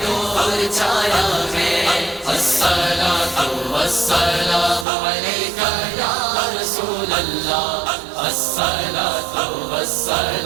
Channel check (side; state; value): left; drops out; at 4.9 s